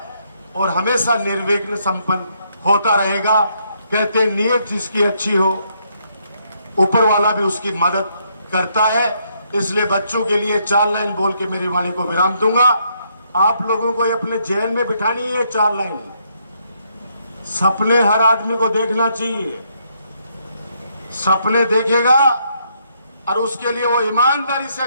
और हमेशा निर्विघ्न संपन्न होता रहेगा। कहते हैं नीयत जिसकी अच्छी हो ऊपर वाला भी उसकी मदद करता है। इसलिए बच्चों के लिए 4 लाइन बोल के मेरी वाणी को विराम दूंगा। आप लोगों को अपने जेल में बिठानी है 4 लाइन। सपने हर आदमी को देखना चाहिए। सपने देखेगा और उसके लिए वो ईमानदारी से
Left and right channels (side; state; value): both; inverted; correlation -0.73